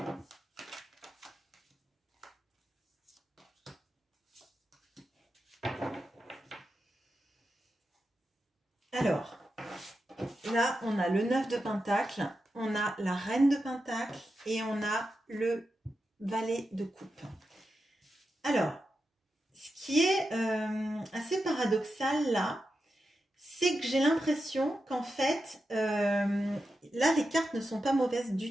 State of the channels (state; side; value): normal; both; correlation 0.88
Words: Alors, là, on a le 9 de Pentacle, on a la Reine de Pentacle et on a le Valet de Coupe. Alors, ce qui est assez paradoxal là, c'est que j'ai l'impression qu'en fait, là, les cartes ne sont pas mauvaises